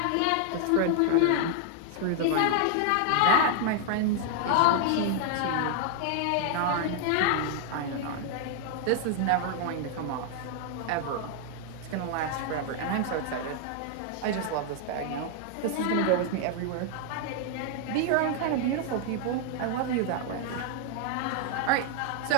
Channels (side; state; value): both; different; correlation 0.00